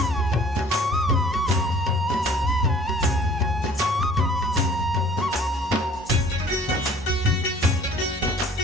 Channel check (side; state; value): both; normal; correlation 0.52